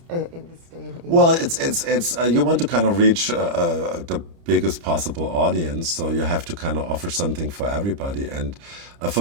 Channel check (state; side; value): late; left; 30 ms